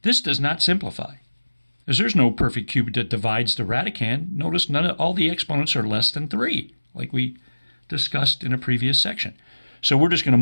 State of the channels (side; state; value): both; inverted; correlation -1.00